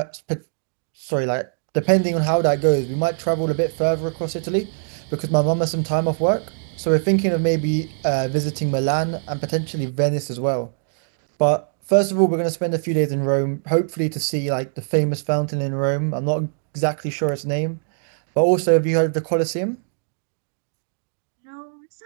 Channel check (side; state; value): left; silent; digital silence